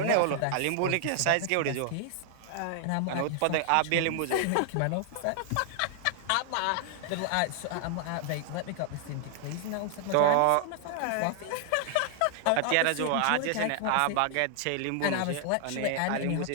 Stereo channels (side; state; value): both; different; correlation 0.00